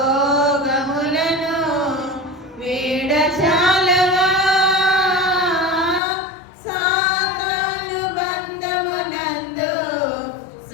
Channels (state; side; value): drops out; right; at 6.0 s